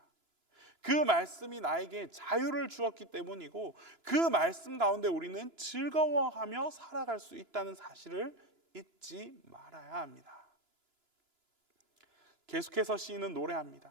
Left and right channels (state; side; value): late; left; 2.9 ms